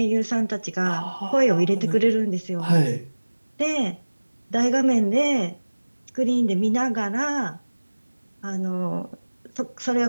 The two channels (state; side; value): inverted; both; correlation -1.00